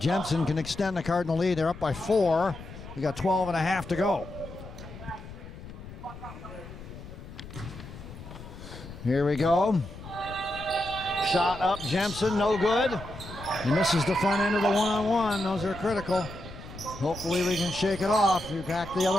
can extend the Cardinal lead. They're up by 4. We got 12 and a half to go. Here we go. Shot up, Jemson, no good. He misses the front end of the one-on-one. Those are critical. Hopefully we can shake it off. Back the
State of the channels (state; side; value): noise; left; rumble, 14 dB below the sound